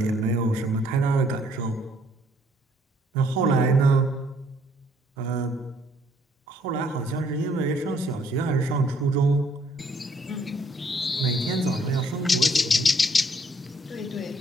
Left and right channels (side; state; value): both; normal; correlation 0.65